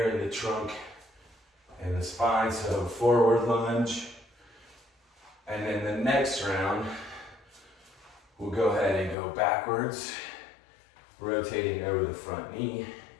in the trunk and the spine. So forward lunge. And then the next round, we'll go ahead and go backwards, rotating over the front knee.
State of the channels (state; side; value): drops out; right; at 9.2 s